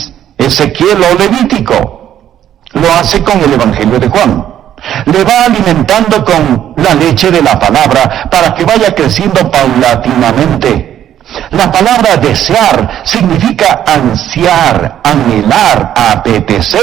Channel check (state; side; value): quieter; left; 10.9 dB